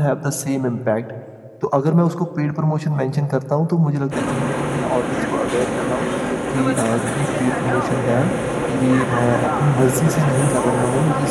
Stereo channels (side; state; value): both; identical; correlation 1.00